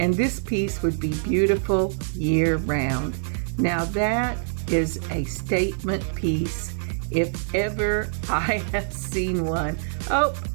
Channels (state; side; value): silent; left; 59 dB below the other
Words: this piece would be beautiful year round. Now that is a statement piece if ever I have seen one. Oh,